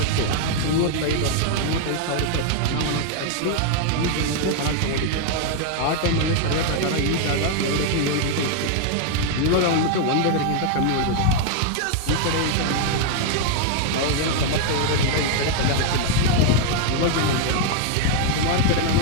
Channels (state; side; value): different; both; correlation 0.00